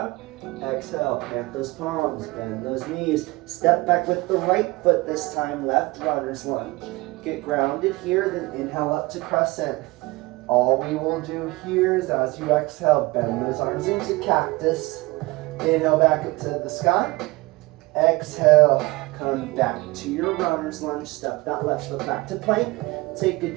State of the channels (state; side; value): quieter; left; 22.3 dB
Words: Exhale, plant those palms, bend those knees. Step back with the right foot this time, left runner's lunge. Get grounded here, then inhale up to crescent. All we will do here is as you exhale, bend those arms into cactus. Inhale back up to the sky. Exhale, come back to your runner's lunge. Step that left foot back to plank. Take a